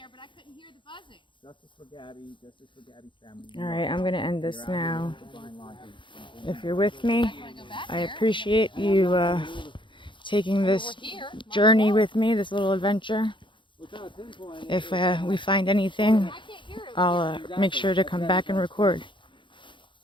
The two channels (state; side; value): late; right; 0.24 ms